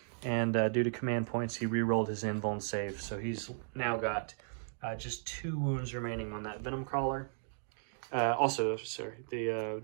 and due to command points, he re-rolled his invuln save. So he's now got just 2 wounds remaining on that Venom Crawler. The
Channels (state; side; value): silent; left; digital silence